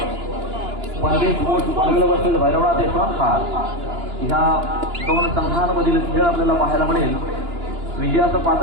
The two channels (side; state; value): left; late; 2.9 ms